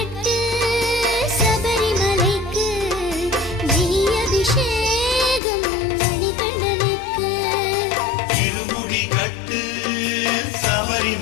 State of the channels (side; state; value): right; drops out; at 5.4 s